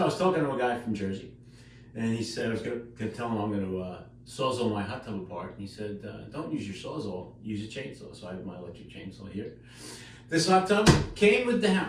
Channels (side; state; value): both; identical; correlation 1.00